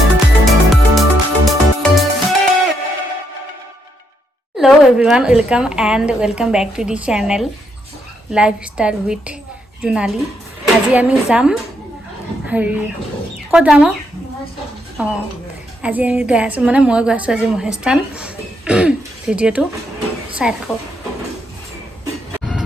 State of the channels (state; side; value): normal; both; correlation 0.77